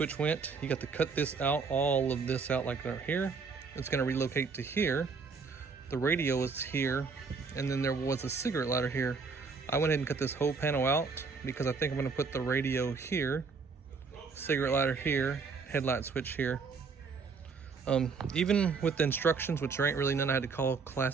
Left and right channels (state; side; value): quieter; left; 4.9 dB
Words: went. You got to cut this out, all of this out like right here. It's gonna relocate to here. The radio is here, and then there was a cigarette lighter here. I went ahead and cut this whole panel out because I think I'm gonna put the radio here, cigarette lighter here, headlight switch here. Even with the instructions, which there ain't really none, I had to call